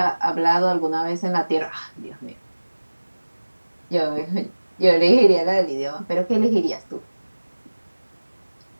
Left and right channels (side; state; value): both; inverted; correlation -1.00